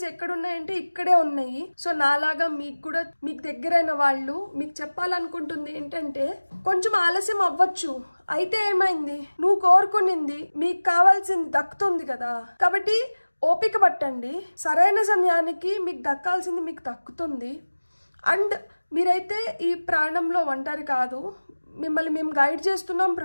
ఎక్కడున్నాయంటే ఇక్కడే ఉన్నాయి. సో నాలాగా మీకు దగ్గరైన వాళ్ళు మీకు చెప్పాలనుకుంటుంది ఏంటంటే కొంచెం ఆలస్యం అవ్వచ్చు, అయితే ఏమైంది, నువ్వు కోరుకునింది మీకు కావాల్సింది దక్కుతుంది కదా. కాబట్టి ఓపిక పట్టండి. సరైన సమయానికి మీకు దక్కాల్సింది మీకు దక్కుతుంది. అండ్ మీరైతే ఈ ప్రాణంలో ఒంటరి కాదు. మిమ్మల్ని మేము గైడ్ చేస్తున్నాం,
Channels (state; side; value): inverted; both; correlation -1.00